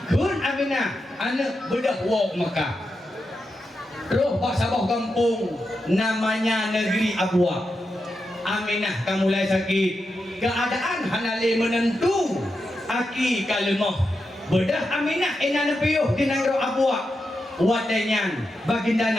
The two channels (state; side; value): normal; both; correlation 0.87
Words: kun Aminah anak bedah wak Mekah roh pak sabah kampung namanya negeri Abuak. Aminah kamu mulai sakit keadaan hanale menentu aki kalemah bedah Aminah ina nepiyuh di negeri Abuak wadainya baginda